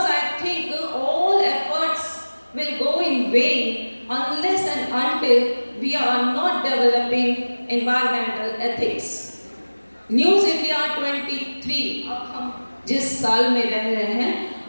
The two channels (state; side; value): inverted; both; correlation -1.00